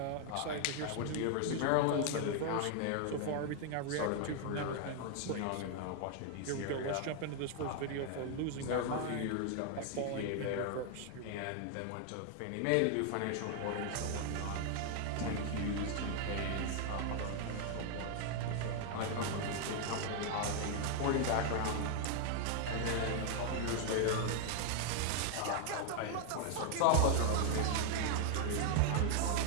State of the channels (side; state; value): both; different; correlation 0.00